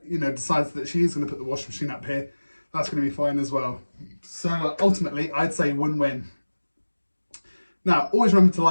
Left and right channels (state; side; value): inverted; both; correlation -1.00